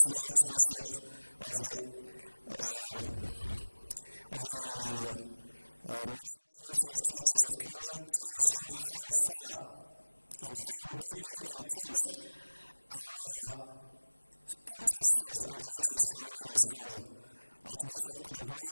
the Archbishop of the National Council of Churches of Kenya, tells you how far and how deeply entrenched our interfaith and religious harmony has gone. Archbishop couldn't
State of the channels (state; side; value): inverted; both; correlation -1.00